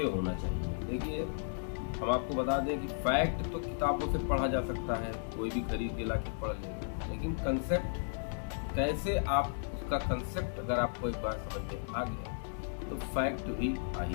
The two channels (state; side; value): silent; right; digital silence